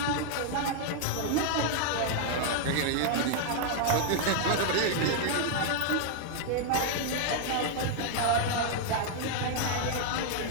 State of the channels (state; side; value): different; both; correlation 0.00